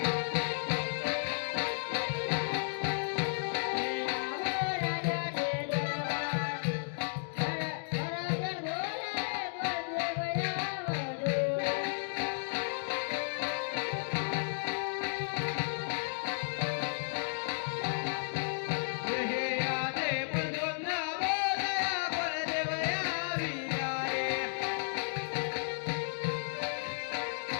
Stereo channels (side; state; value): right; silent; digital silence